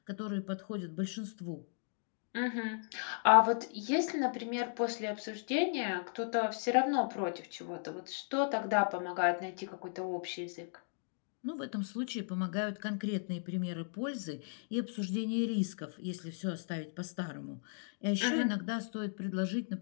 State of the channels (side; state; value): right; silent; digital silence